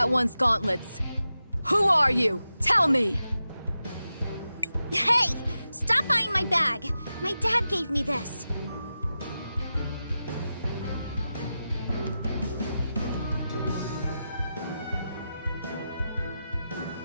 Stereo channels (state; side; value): inverted; both; correlation -0.91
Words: one's gauntlets. Who are you? Tell me! Hey! Stop buying my bag! My dad gave me this.